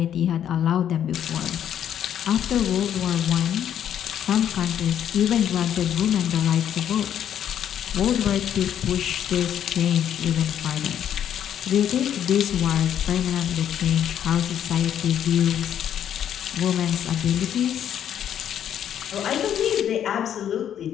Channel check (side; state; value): right; quieter; 9.8 dB